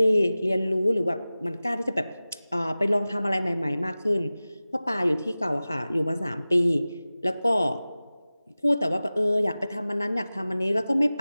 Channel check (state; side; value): inverted; both; correlation -0.97